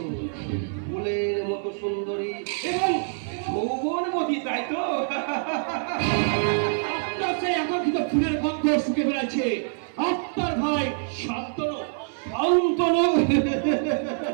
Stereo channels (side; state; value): left; silent; 61 dB below the other